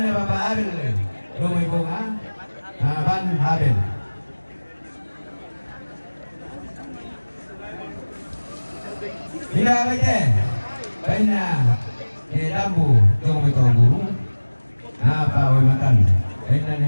Bapak Abel rumah bunga naban Abel. Bila baite bena lambu rumah guru napa away matan. Bena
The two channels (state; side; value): inverted; both; correlation -1.00